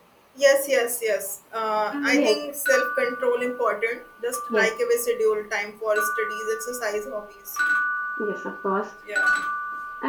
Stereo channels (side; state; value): both; identical; correlation 1.00